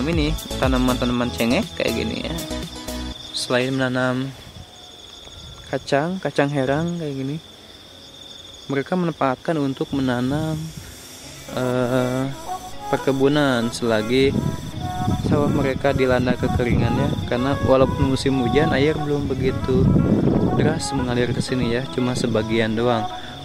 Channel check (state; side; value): identical; both; correlation 1.00